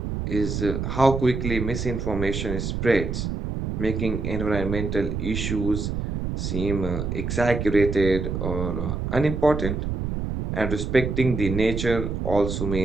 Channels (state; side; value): noise; right; rumble, 3 dB below the sound